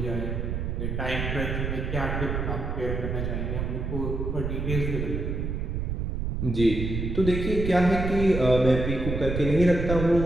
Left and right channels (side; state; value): right; noise; rumble, 2 dB below the sound